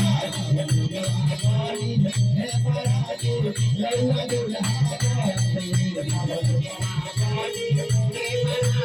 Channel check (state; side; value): identical; both; correlation 1.00